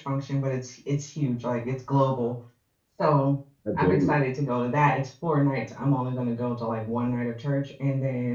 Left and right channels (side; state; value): both; identical; correlation 1.00